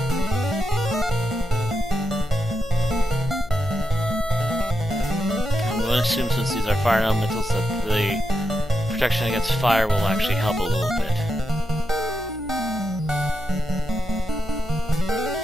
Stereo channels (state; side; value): noise; left; hum, 17 dB below the sound